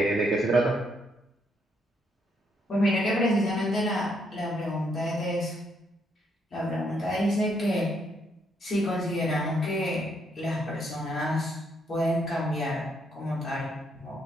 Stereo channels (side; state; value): both; normal; correlation 0.74